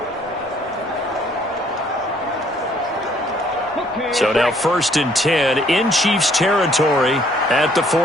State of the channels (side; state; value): both; normal; correlation 0.63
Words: So now 1st and 10 in Chiefs territory at the